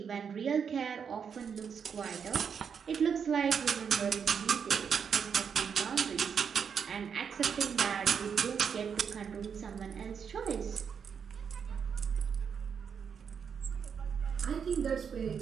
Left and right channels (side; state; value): left; quieter; 6.9 dB